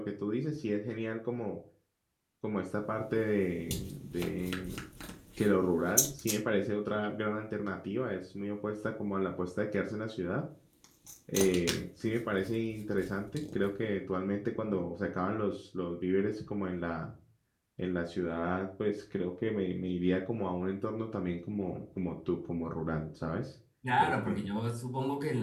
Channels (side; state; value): both; identical; correlation 1.00